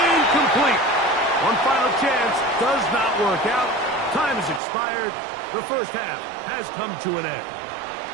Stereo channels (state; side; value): drops out; left; at 4.6 s